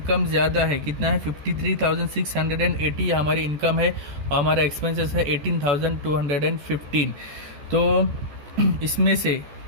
ज़्यादा है, कितना है 53,680 हमारी इनकम है, और हमारा एक्सपेंसेस है 18,215। तो इसमें से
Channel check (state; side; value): late; left; 14 ms